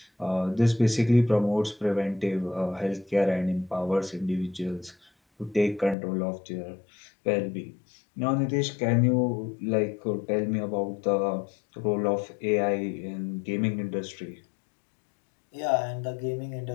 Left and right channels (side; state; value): right; drops out; at 6.0 s